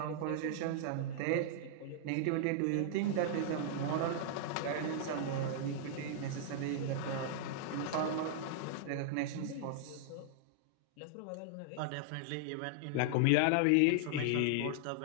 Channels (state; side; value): different; both; correlation -0.01